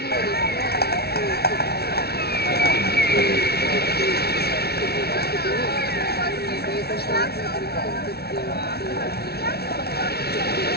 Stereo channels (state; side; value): late; right; 0.46 ms